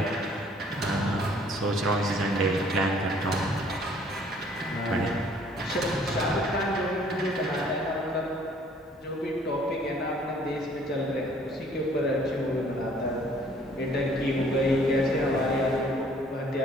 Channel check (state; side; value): normal; both; correlation 0.58